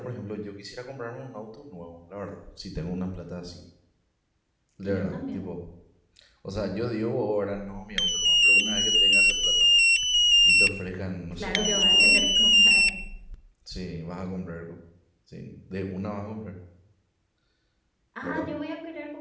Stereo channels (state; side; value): identical; both; correlation 1.00